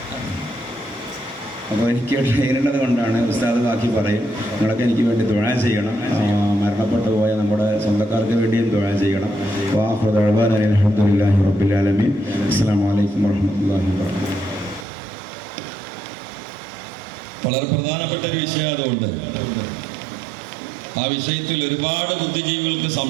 അപ്പോൾ എനിക്ക് ട്രെയിനുള്ളത് കൊണ്ടാണ് ഉസ്താദ് ബാക്കി പറയും. നിങ്ങളൊക്കെ എനിക്ക് വേണ്ടി ദുആ ചെയ്യണം. മരണപ്പെട്ടു പോയ നമ്മുടെ സ്വന്തക്കാർക്ക് വേണ്ടിയും ദുആ ചെയ്യണം. അൽഹംദുലില്ലാഹി റബ്ബിൽ ആലമീൻ. അസ്സലാമു അലൈക്കും വറഹ്മത്തുള്ളാഹി വബറകാതുഹു. വളരെ പ്രധാനപ്പെട്ട ഒരു വിഷയം അതുകൊണ്ട് ആ വിഷയത്തിൽ ഒരുപാട് ബുദ്ധിജീവികൾക്ക്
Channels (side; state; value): left; drops out; at 14.9 s